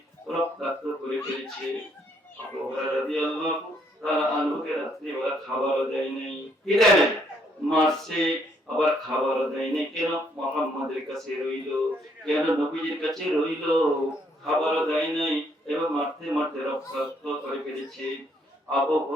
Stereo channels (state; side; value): normal; both; correlation 0.69